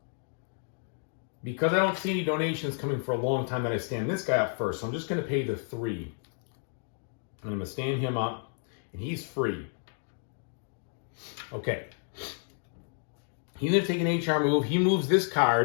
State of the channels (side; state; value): right; silent; 57 dB below the other